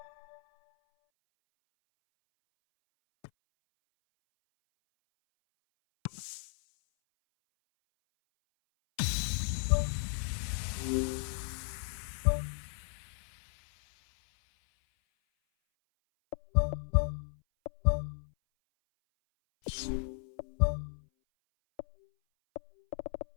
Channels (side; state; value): right; silent; 55 dB below the other